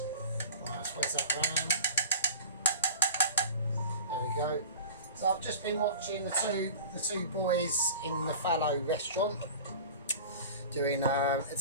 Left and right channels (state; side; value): inverted; both; correlation -0.38